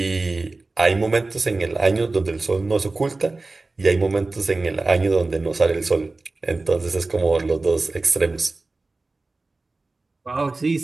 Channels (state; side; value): quieter; left; 3.4 dB